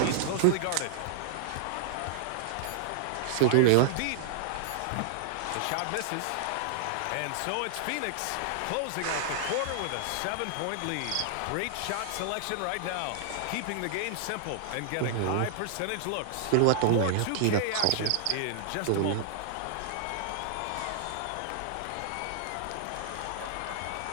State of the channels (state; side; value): different; both; correlation -0.01